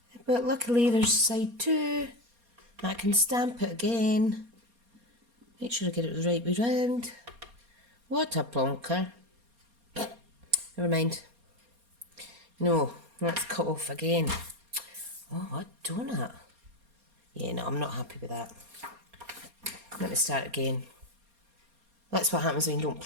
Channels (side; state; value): left; late; 4.2 ms